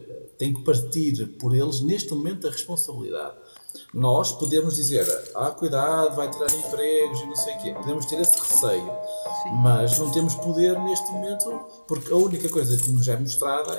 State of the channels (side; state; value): both; inverted; correlation -1.00